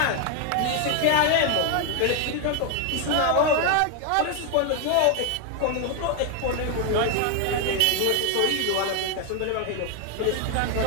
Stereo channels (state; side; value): different; both; correlation 0.01